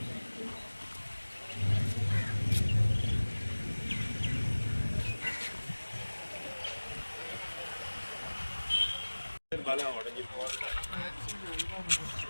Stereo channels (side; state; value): both; inverted; correlation -1.00